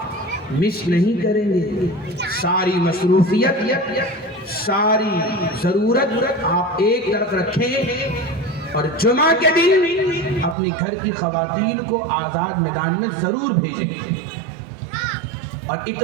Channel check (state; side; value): drops out; left; at 10.6 s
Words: مس نہیں کریں گے، ساری مصروفیت، ساری ضرورت آپ ایک طرف رکھیں اور جمعہ کے دن اپنی گھر کی خواتین کو آزاد میدان میں ضرور بھیجیں، اور